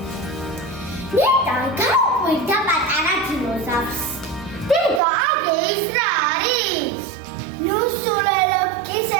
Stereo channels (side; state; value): left; drops out; at 5.0 s